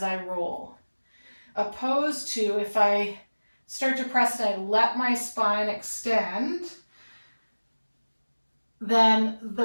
I roll. Opposed to if I start to press and I let my spine extend, then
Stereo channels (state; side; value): inverted; both; correlation -1.00